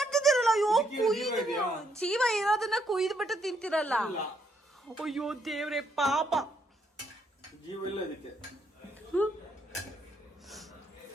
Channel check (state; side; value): normal; both; correlation 0.74